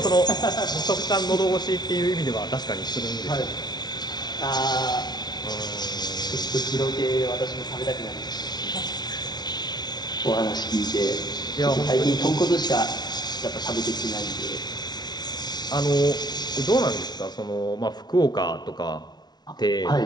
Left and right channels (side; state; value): right; late; 0.20 ms